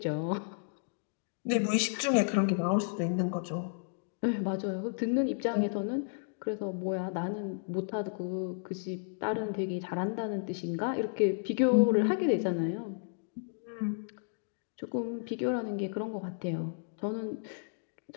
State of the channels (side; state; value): right; silent; digital silence